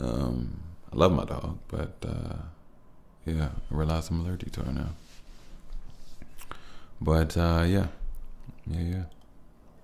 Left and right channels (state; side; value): identical; both; correlation 1.00